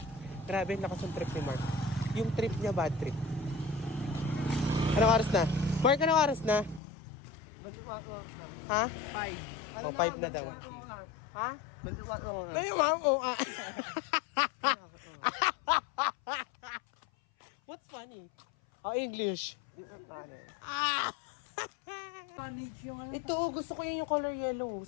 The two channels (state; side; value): drops out; right; at 6.8 s